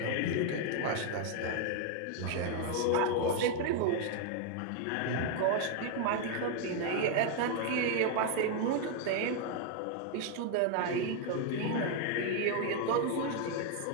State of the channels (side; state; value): both; different; correlation 0.01